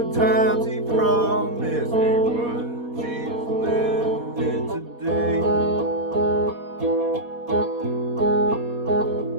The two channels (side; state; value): left; late; 4.2 ms